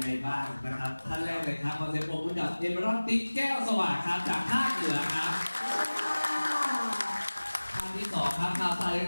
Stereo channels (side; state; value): both; inverted; correlation -1.00